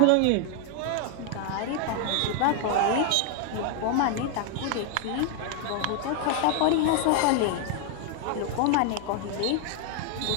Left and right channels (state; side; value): different; both; correlation 0.00